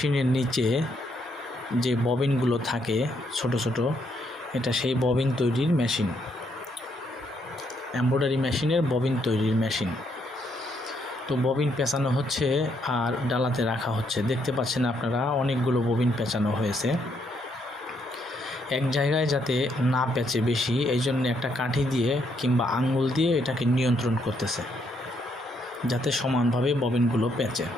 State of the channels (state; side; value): normal; both; correlation 0.74